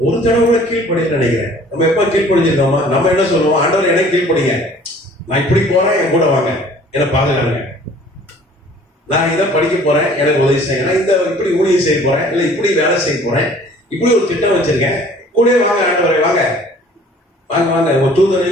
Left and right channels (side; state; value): both; normal; correlation 0.52